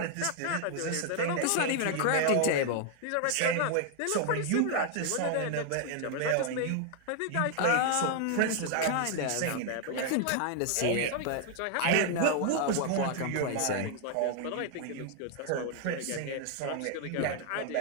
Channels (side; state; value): both; different; correlation 0.00